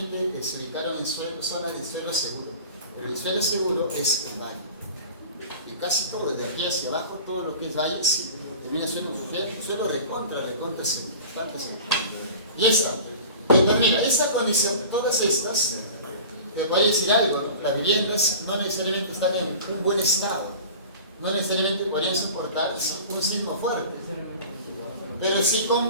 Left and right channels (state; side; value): inverted; both; correlation -0.39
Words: se ubicaron en zonas de suelo seguro, pero el suelo seguro es el valle. Y casi todo, desde aquí hacia abajo, todo lo que es valle, sí, termina siendo un suelo recontra seguro, bastante seguro. Y esta, entonces mira, esa condición, todas estas, te voy a decir algo, ¿no? Las viviendas no necesariamente están en un buen estado, no necesariamente podrían soportar un sismo fuerte. Pero si